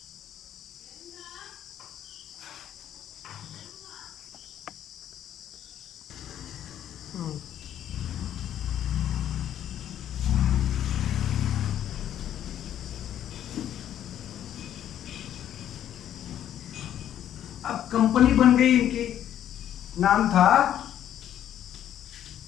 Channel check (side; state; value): right; quieter; 10.9 dB